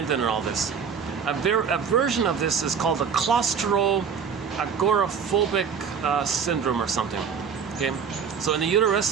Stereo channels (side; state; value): left; quieter; 6.7 dB